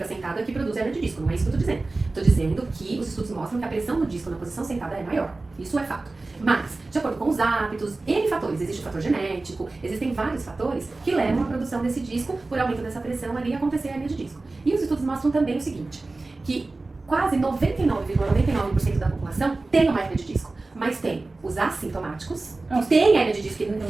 sentado é que produz hérnia de disco, não é isso que eu estou dizendo. Estou dizendo que os estudos mostram que a pressão no disco na posição sentada é maior. Isso é fato. Mas, de acordo com os hábitos, N fatores, existe o fator genético, existem vários fatores que levam à produção desse disco, por aumento dessa pressão ali, acontecer a hérnia de disco. E os estudos mostram também o seguinte, que quase 99,99% da população tem uma hérnia de disco, mas tem os assintomáticos, que tem hérnia de disco,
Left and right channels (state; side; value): quieter; left; 3.3 dB